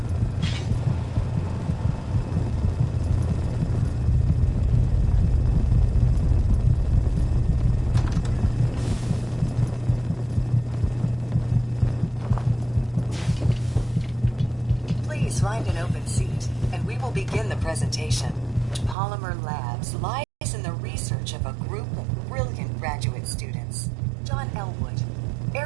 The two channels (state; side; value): drops out; left; at 18.9 s